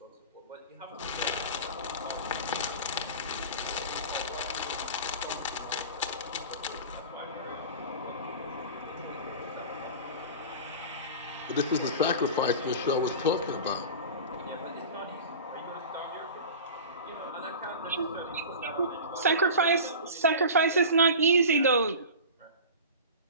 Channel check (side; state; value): both; inverted; correlation -0.34